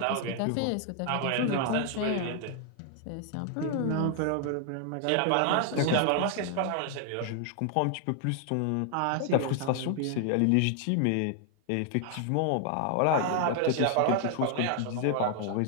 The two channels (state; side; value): different; both; correlation 0.00